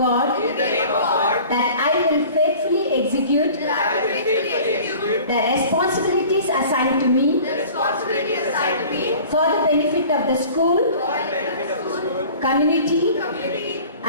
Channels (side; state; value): both; inverted; correlation -0.45